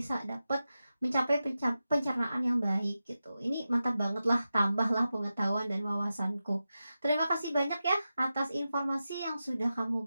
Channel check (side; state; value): both; inverted; correlation -0.92